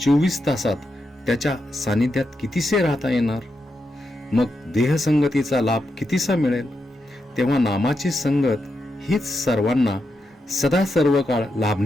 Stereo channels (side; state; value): both; normal; correlation 0.85